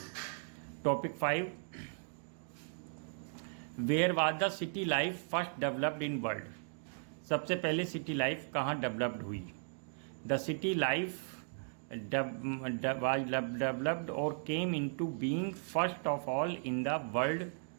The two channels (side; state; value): left; silent; digital silence